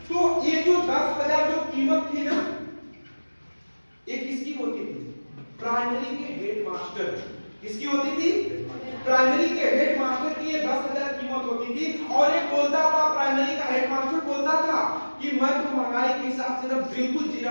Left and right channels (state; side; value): inverted; both; correlation -1.00